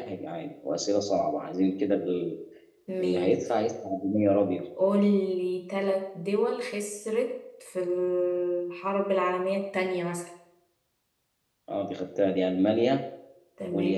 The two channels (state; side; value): identical; both; correlation 1.00